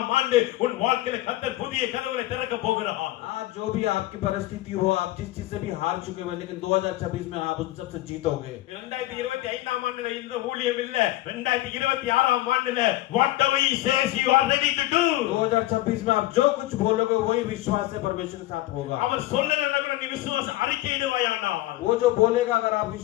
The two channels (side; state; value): right; quieter; 16.6 dB